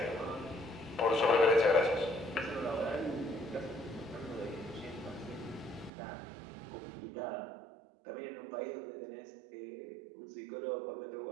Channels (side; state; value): left; drops out; at 5.9 s